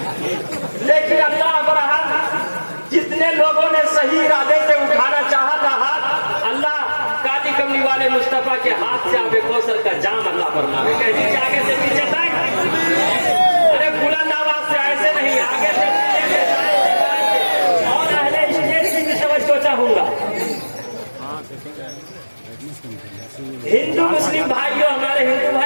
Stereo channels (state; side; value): inverted; both; correlation -1.00